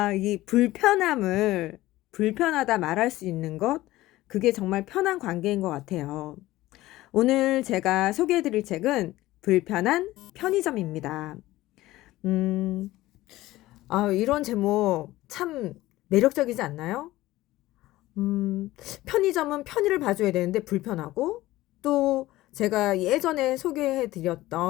이 불편하다 말할 수 있는 것, 그게 정말 편한 관계인 것 같아요. 오늘 제가 소개해드릴 책은 불편한 편의점입니다. 음, 이런 제목 참 매력적이지 않나요? 음, 편의점은 편의를 봐줘야 되는데 불편하고, 또 제가 예전에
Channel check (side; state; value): right; quieter; 17.0 dB